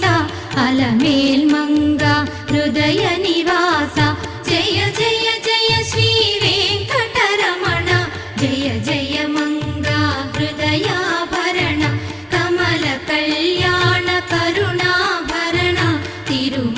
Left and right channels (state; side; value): identical; both; correlation 1.00